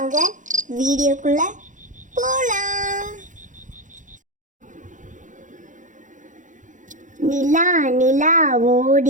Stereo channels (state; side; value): late; left; 0.37 ms